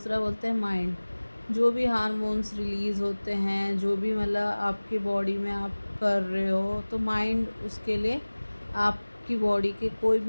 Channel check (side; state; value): both; inverted; correlation -1.00